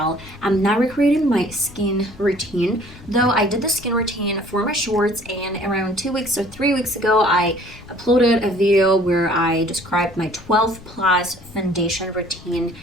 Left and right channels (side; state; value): left; noise; rumble, 20 dB below the sound